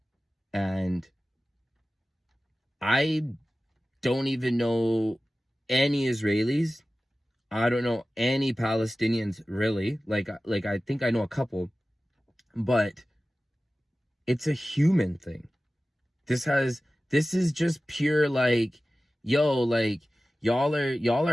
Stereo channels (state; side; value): normal; both; correlation 0.96